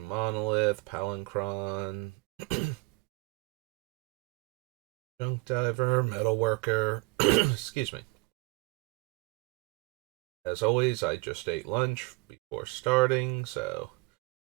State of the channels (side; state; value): left; quieter; 25.3 dB